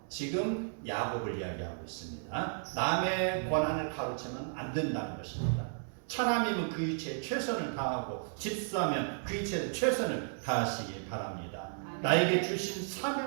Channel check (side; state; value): left; silent; digital silence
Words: 지금 야곱을 이야기하고 있습니다. 남의 권한을 가로채면 안 된다는 것입니다. 차남이면 그 이치에 최선을 다하고 집사면 그 이치에 최선을 다하시기 바랍니다. 나에게 주신